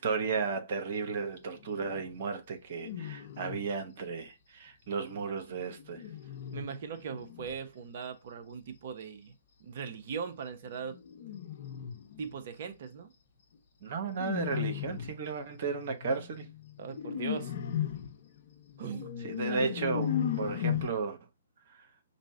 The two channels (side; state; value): both; inverted; correlation -0.49